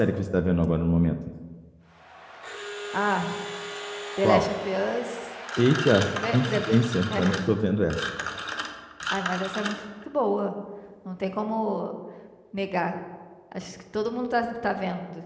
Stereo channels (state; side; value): identical; both; correlation 1.00